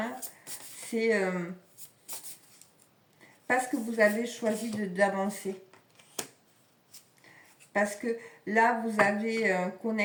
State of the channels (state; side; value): identical; both; correlation 1.00